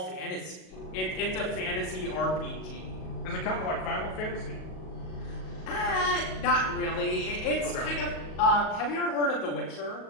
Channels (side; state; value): right; late; 38 ms